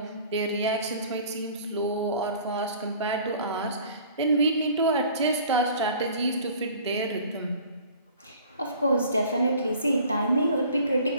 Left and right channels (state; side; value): inverted; both; correlation -0.49